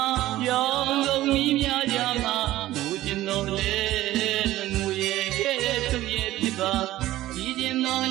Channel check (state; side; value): quieter; left; 15.4 dB